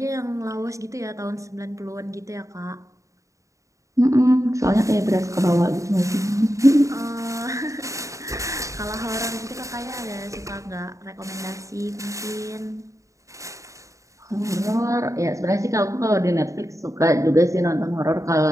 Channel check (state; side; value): late; left; 0.15 ms